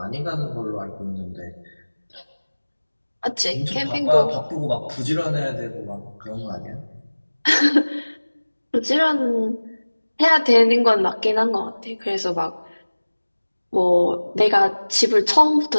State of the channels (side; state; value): both; inverted; correlation -1.00